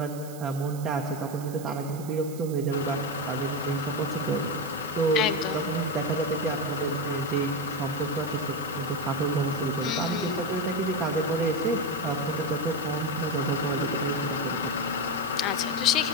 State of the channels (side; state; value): right; noise; hiss, 17 dB below the sound